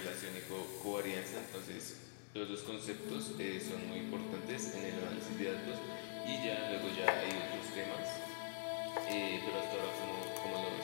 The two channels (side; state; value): right; silent; digital silence